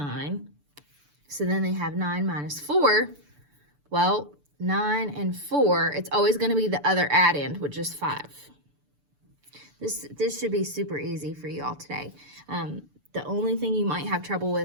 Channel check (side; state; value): left; late; 6.9 ms